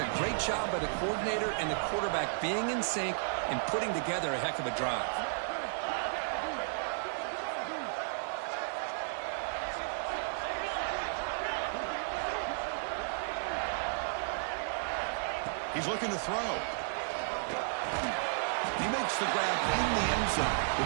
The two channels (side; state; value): left; silent; 55 dB below the other